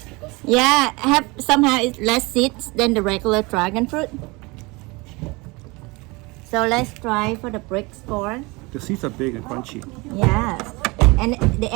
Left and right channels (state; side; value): quieter; left; 25.3 dB